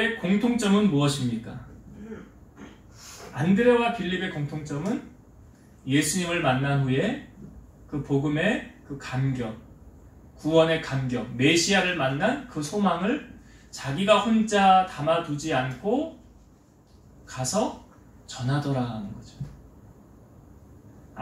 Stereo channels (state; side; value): identical; both; correlation 1.00